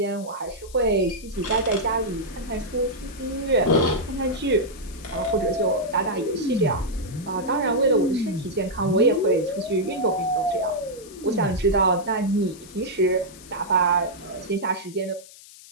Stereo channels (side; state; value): left; noise; hiss, 20 dB below the sound